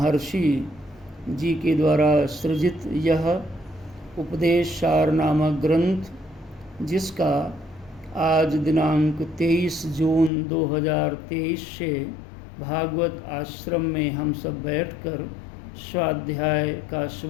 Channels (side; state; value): right; drops out; at 10.3 s